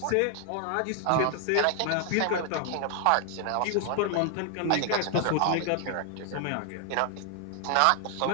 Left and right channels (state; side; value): different; both; correlation 0.00